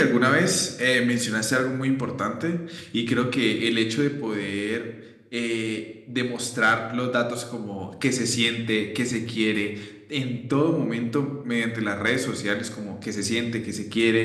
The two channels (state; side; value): identical; both; correlation 1.00